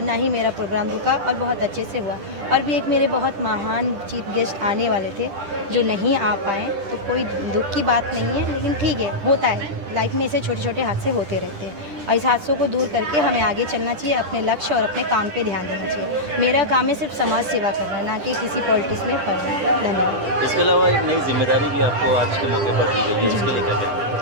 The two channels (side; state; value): left; late; 10 ms